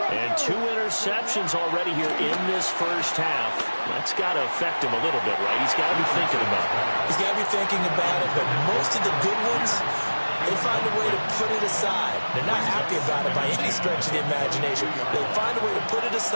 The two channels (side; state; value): both; inverted; correlation -1.00